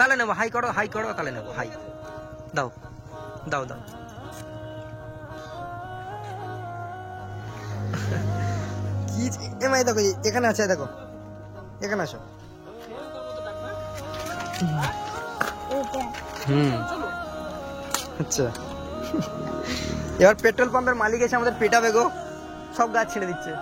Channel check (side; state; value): both; identical; correlation 1.00